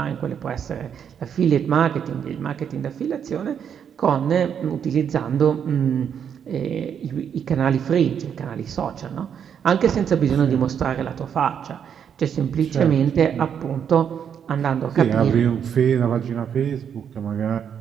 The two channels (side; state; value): left; quieter; 8.1 dB